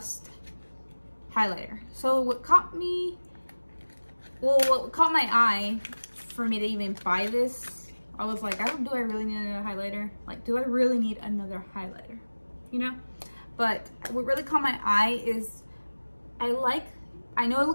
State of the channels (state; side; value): inverted; both; correlation -1.00